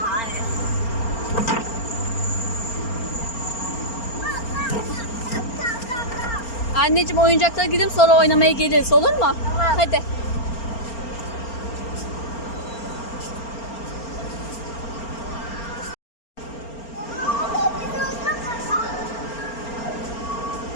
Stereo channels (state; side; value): late; right; 4.4 ms